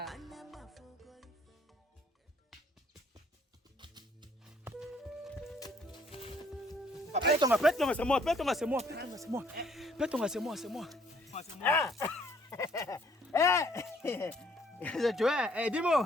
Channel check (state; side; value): normal; both; correlation 0.63